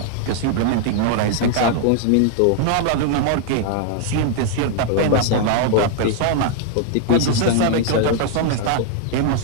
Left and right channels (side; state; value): both; different; correlation 0.00